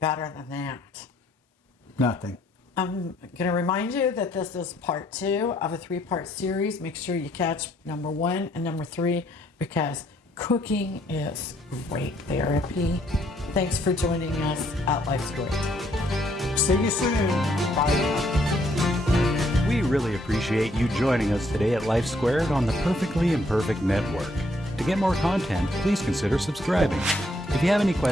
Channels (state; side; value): normal; both; correlation 0.69